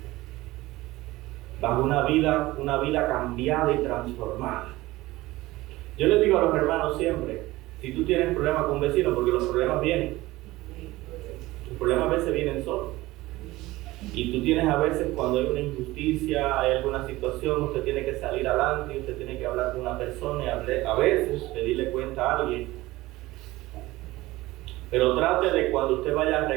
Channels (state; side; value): quieter; left; 18.6 dB